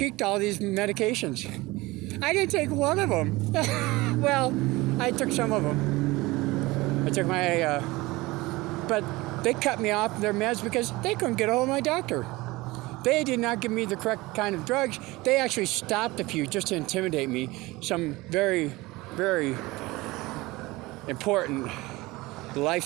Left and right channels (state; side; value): quieter; left; 21.1 dB